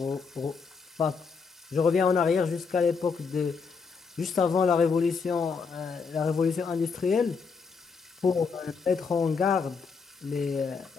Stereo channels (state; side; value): quieter; right; 5.2 dB